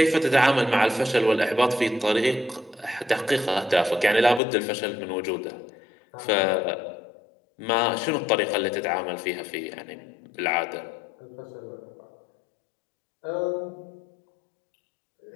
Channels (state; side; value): drops out; right; at 4.4 s